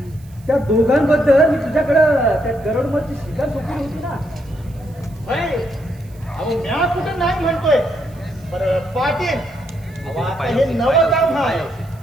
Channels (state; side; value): noise; right; hiss, 28 dB below the sound